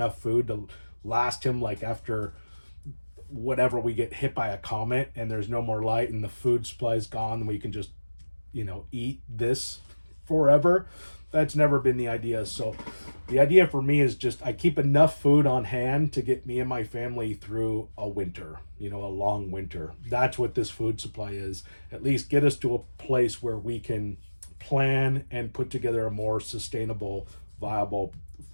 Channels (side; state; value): both; inverted; correlation -1.00